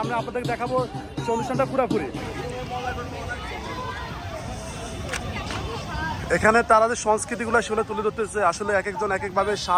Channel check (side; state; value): both; identical; correlation 1.00